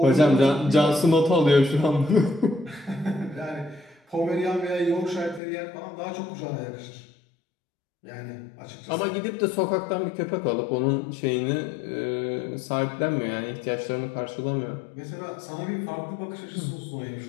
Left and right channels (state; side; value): drops out; right; at 5.4 s